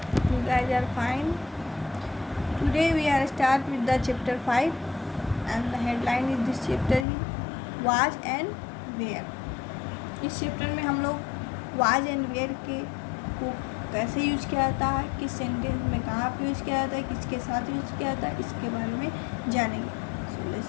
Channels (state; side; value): drops out; right; at 7.1 s